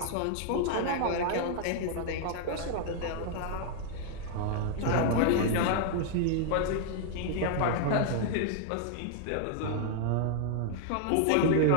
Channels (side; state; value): both; different; correlation 0.00